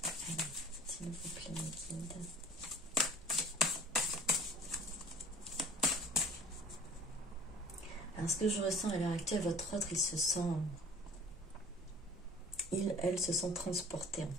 s'il vous plaît, mes guides. Alors, ce que je ressens à l'heure actuelle, votre autre, elle se sent transportée, en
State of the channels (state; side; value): normal; both; correlation 0.47